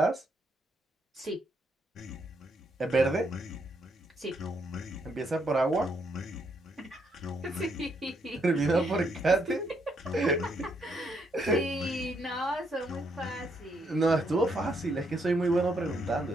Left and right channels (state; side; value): normal; both; correlation 0.75